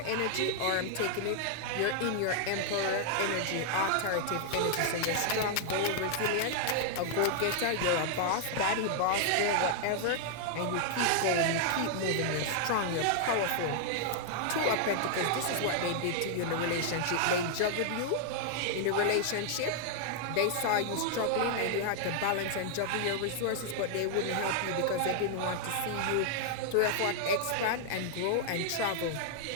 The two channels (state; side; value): different; both; correlation -0.01